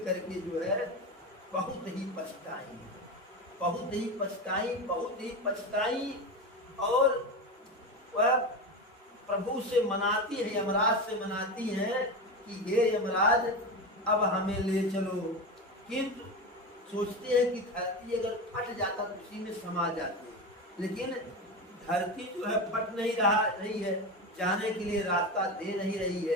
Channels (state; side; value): normal; both; correlation 0.21